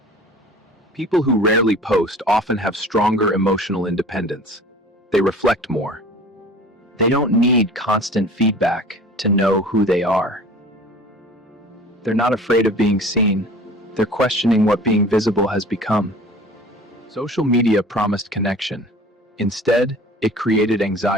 People who rarely post often have stronger emotional independence. They reflect more. They don't need constant feedback to know who they are. They're not afraid of being seen. They're questioning what being visible has become. Social media promised connection. Instead, it created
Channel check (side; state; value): both; normal; correlation 0.44